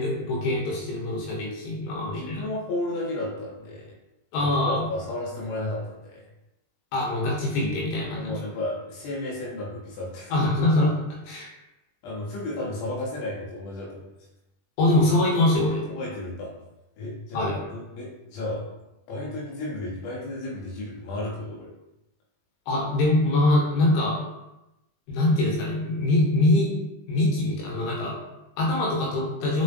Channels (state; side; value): late; right; 20 ms